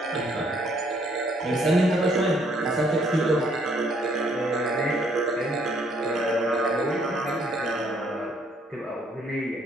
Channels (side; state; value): both; normal; correlation 0.66